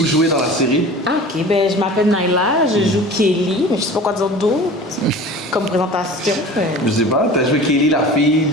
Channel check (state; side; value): normal; both; correlation 0.40